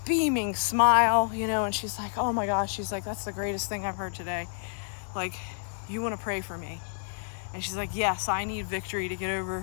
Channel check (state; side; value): silent; right; 58 dB below the other